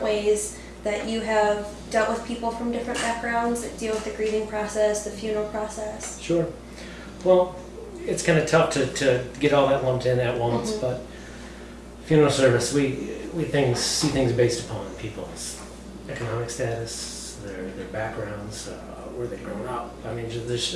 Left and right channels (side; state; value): both; identical; correlation 1.00